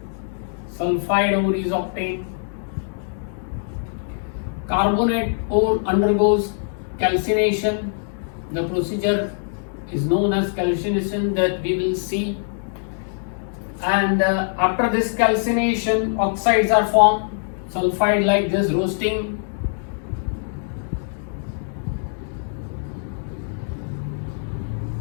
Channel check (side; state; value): right; silent; digital silence